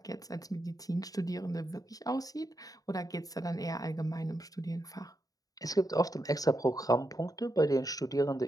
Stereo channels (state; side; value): late; right; 0.18 ms